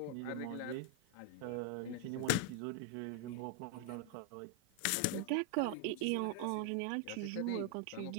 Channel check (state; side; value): different; both; correlation 0.00